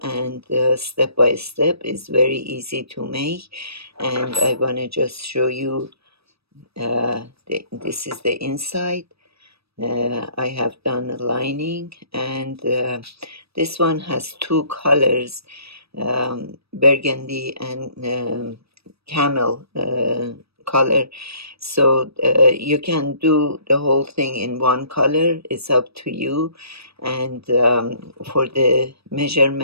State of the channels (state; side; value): late; left; 0.78 ms